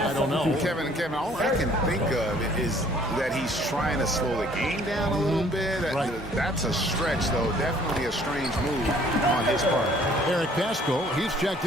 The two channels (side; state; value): both; normal; correlation 0.58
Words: don't know. Kevin, all I can think of is that he's trying to slow the game down a little bit. Right. That's a stretch, though. Definitely a strange move on his part. Eric Pascal, he's checked